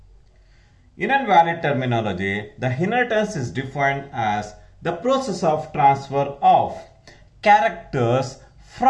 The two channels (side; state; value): both; identical; correlation 1.00